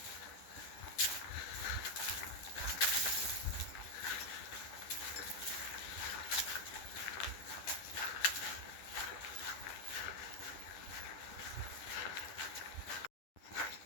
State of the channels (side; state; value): right; late; 10 ms